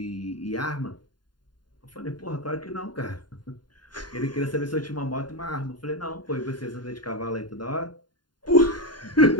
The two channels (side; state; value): right; late; 0.71 ms